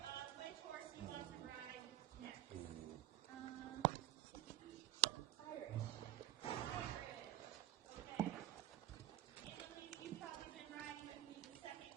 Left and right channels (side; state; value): left; quieter; 12.8 dB